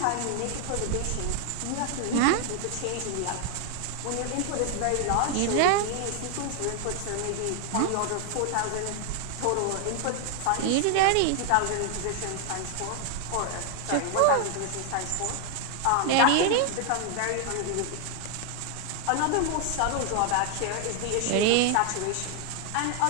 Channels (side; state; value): both; different; correlation 0.00